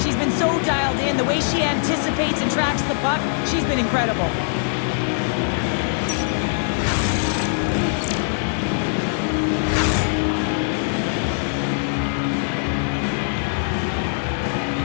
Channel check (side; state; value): right; silent; 64 dB below the other